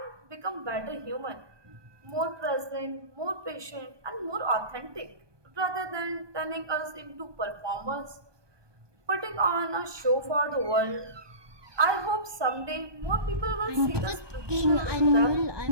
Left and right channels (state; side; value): late; left; 1.2 ms